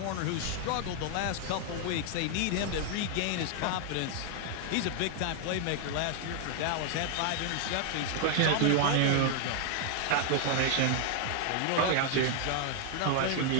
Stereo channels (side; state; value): both; different; correlation 0.00